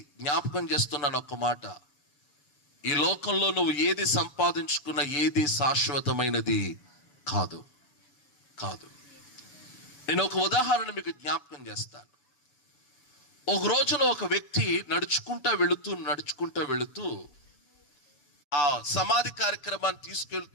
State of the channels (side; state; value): right; late; 6.8 ms